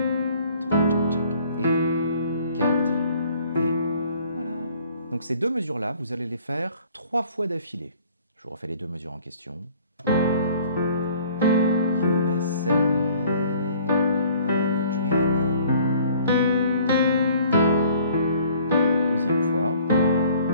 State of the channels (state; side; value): inverted; both; correlation -0.55